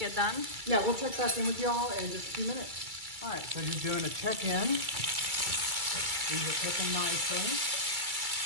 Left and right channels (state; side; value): late; left; 2.3 ms